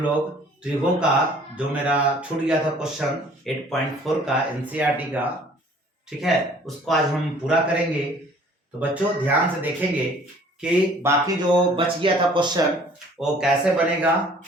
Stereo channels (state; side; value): normal; both; correlation 0.54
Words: लोग त्रिभुजों का जो मेरा छूट गया था क्वेश्चन 8.4 का एनसीईआरटी का, ठीक है, उसको आज हम पूरा करेंगे। तो बच्चों ध्यान से देखेंगे कि बाकी जो बच गया था क्वेश्चन वो कैसे बनेगा।